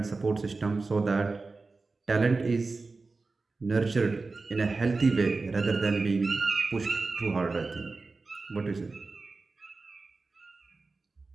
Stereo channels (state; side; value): quieter; left; 3.8 dB